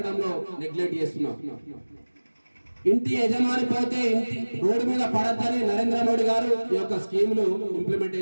నెగ్లెక్ట్ చేస్తున్నాం. ఇంటి యజమాని పోతే ఇంటి రోడ్డు మీద పడద్దని నరేంద్ర మోడీ గారు ఈ యొక్క స్కీములు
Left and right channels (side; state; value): both; inverted; correlation -1.00